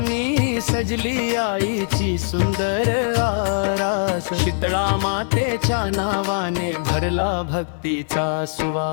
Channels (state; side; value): silent; right; 57 dB below the other